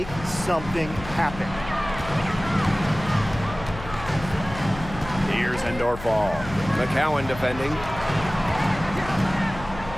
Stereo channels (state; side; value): noise; left; hum, 12 dB below the sound